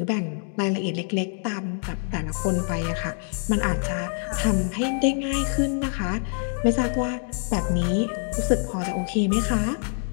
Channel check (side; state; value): right; silent; 55 dB below the other